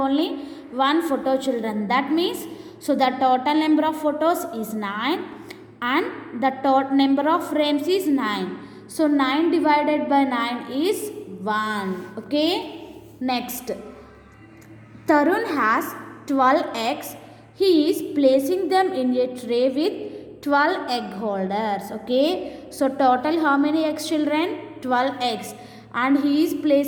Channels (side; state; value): both; identical; correlation 1.00